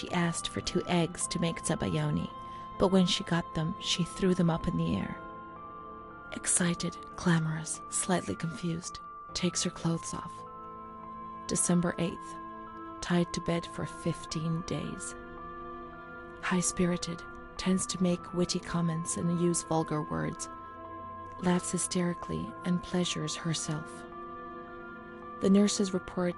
asked for 2 eggs to make zabayoni, but when she got them, she threw them up in the air. Excited, clamorous, slightly confused, takes her clothes off. December 8th, tied to bed for 15 days. High-spirited, tends to make witty comments and use vulgar words, laughs hysterically and pleasures herself. The nurses report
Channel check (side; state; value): both; identical; correlation 1.00